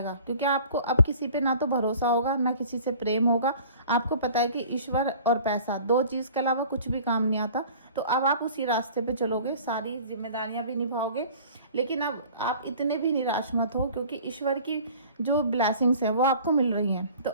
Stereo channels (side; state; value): both; inverted; correlation -0.47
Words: क्योंकि आपको अब किसी पे ना तो भरोसा होगा ना किसी से प्रेम होगा। आपको पता है कि ईश्वर और पैसा, दो चीज़ के अलावा कुछ भी काम नहीं आता। तो अब आप उसी रास्ते पे चलोगे, सारी जिम्मेदारियां भी निभाओगे। लेकिन अब आप इतने भी निराश मत हो, क्योंकि ईश्वर की जो ब्लेसिंग्स है वो आपको मिल रही हैं।